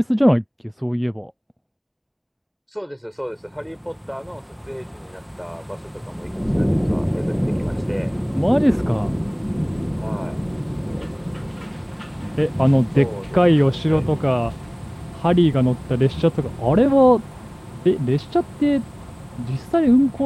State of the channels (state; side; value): identical; both; correlation 1.00